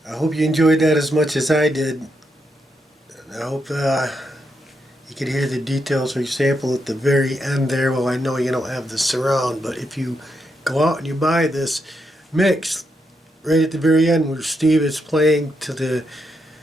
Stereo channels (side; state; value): both; normal; correlation 0.81